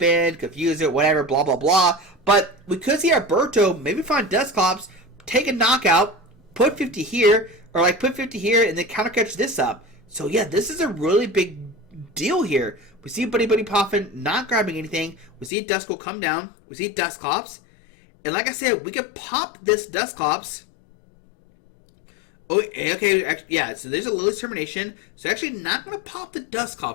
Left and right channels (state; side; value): drops out; right; at 15.5 s